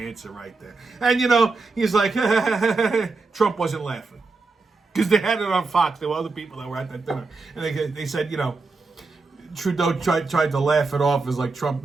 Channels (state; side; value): quieter; left; 3.9 dB